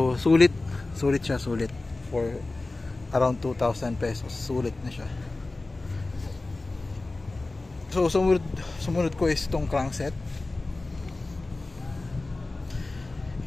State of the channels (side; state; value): right; quieter; 3.2 dB